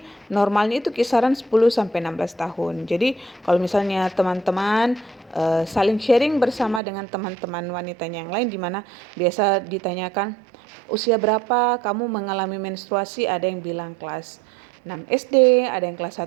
normalnya itu kisaran 10 sampai 16 tahun. Jadi kalau misalnya teman-teman saling sharing bersama dengan teman-teman wanitanya yang lain, di mana biasa ditanyakan usia berapa kamu mengalami menstruasi, ada yang bilang kelas 6 SD, ada yang kelas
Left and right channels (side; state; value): left; drops out; at 6.8 s